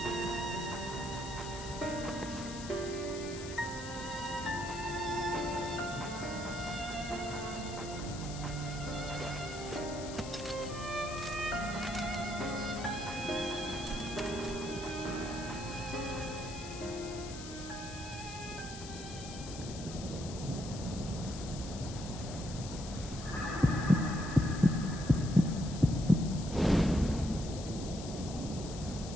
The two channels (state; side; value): noise; left; hiss, 12 dB below the sound